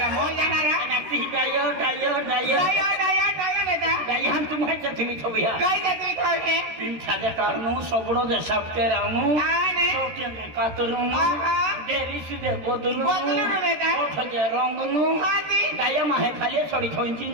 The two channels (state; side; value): late; left; 13 ms